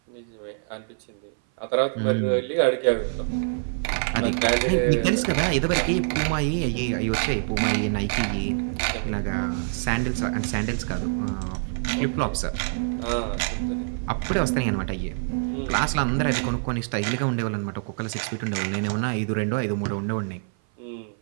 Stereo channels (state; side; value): silent; left; 56 dB below the other